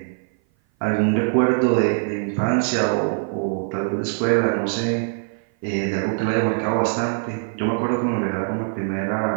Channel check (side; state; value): left; silent; 57 dB below the other